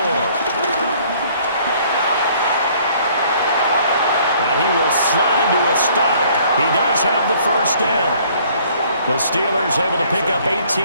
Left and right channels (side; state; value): both; inverted; correlation -0.59